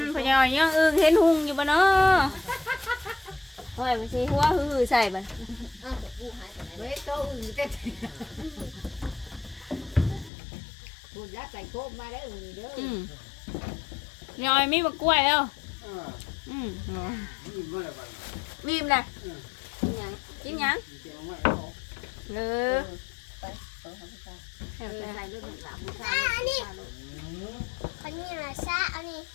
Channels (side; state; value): right; drops out; at 10.3 s